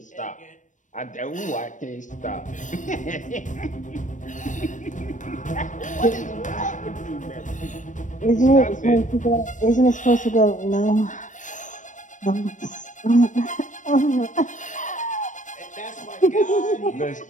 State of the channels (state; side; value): late; right; 0.37 ms